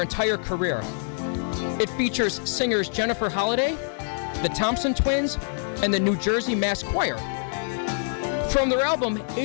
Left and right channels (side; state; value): right; silent; digital silence